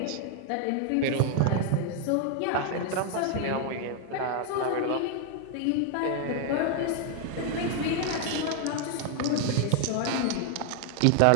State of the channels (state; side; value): different; both; correlation 0.00